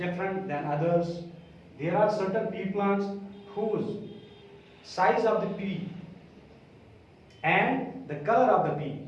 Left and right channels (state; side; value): identical; both; correlation 1.00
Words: than others. There are certain pea plants whose size of the pea and the color of the pea,